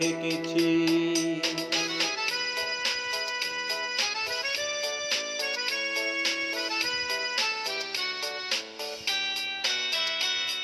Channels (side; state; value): both; identical; correlation 1.00